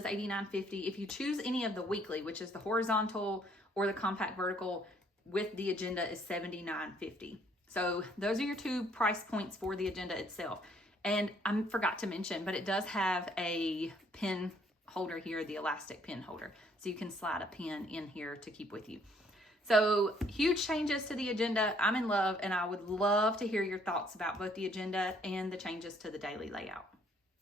$89.50. If you choose any of the weekly, which is the horizontal or the compact vertical with the agenda, is $79.50. So those are your two price points for the agenda itself. And I forgot to mention, but it does have a pen holder here, the elastic pen holder. So you can slide a pen in here to keep with you. So huge changes to the agenda. I'm in love, and I would love to hear your thoughts about both the agenda and the changes to the daily layout.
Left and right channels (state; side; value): normal; both; correlation 0.65